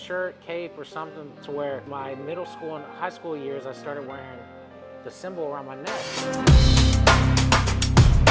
cape, or something, to where my middle school and high school years I started wearing the symbol around my neck.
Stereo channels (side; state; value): both; identical; correlation 1.00